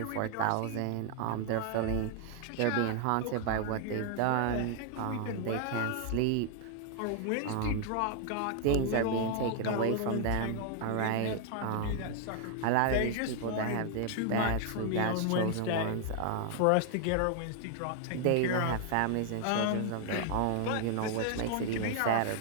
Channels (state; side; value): different; both; correlation 0.00